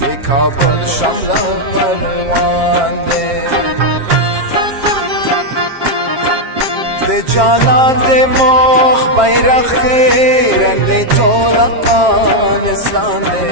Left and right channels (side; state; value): left; late; 7.4 ms